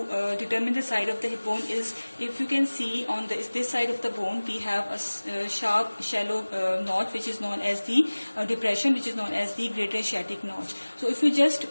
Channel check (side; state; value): both; inverted; correlation -1.00